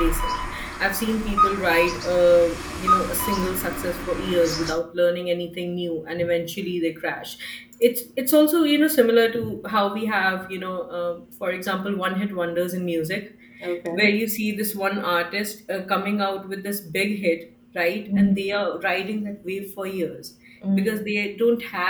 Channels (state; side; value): identical; both; correlation 1.00